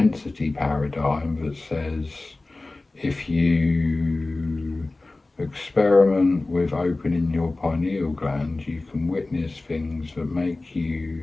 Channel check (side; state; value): right; quieter; 3.1 dB